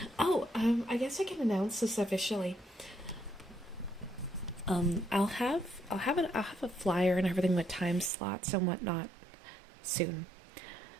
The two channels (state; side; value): drops out; left; at 8.1 s